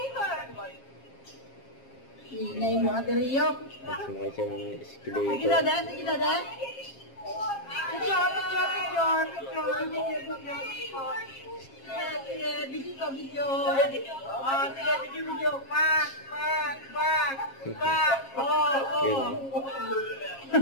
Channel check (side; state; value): right; late; 7.4 ms